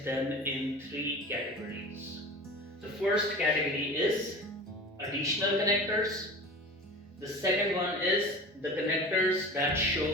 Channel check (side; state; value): both; normal; correlation 0.35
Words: them in three categories. The first category is additional connectors. The second one is the connectors that